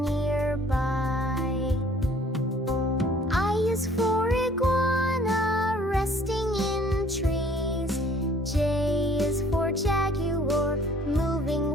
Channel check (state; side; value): normal; both; correlation 0.56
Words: I is for iguana, resting in trees. J is for jaguar, moving